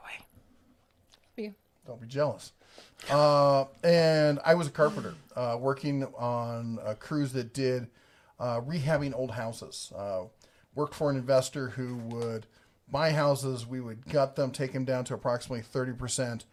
way. Don't be jealous. And I was a carpenter working on a cruise that did rehabbing old houses. Worked for an investor who would buy houses. We would gut them, take them down to approximately 30%,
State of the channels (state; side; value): identical; both; correlation 1.00